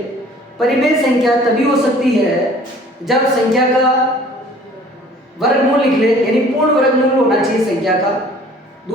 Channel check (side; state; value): both; normal; correlation 0.52